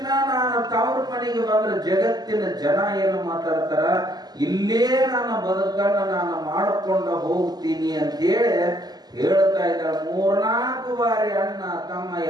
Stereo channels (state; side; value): late; left; 0.20 ms